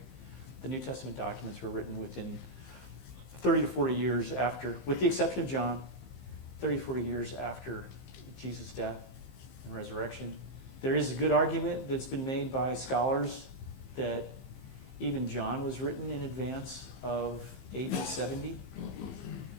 The New Testament documents were written within 30 to 40 years after, with the exception of John, 30 to 40 years after Jesus' death and resurrection. There is a good argument that's been made by scholars that even John was written in advance of AD 70.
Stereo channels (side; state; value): right; late; 15 ms